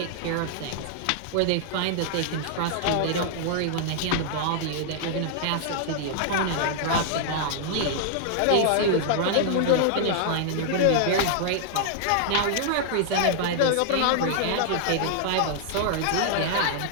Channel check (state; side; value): different; both; correlation -0.01